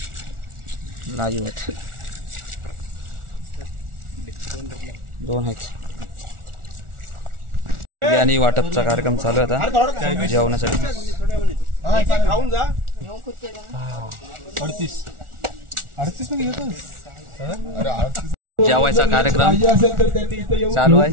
लाईव्ह आहेत. 2 आहेत. बिर्याणी वाटपचा कार्यक्रम चालू आहे आता जेवणासाठी. खाऊन जा. 38 मध्ये घेतो. जेवायचा कार्यक्रम पाहिजे असेल तर त्यांनी इथे येऊन चालू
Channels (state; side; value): late; left; 1.4 ms